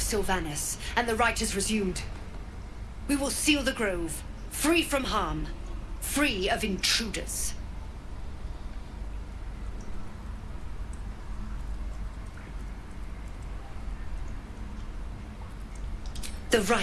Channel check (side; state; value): both; identical; correlation 1.00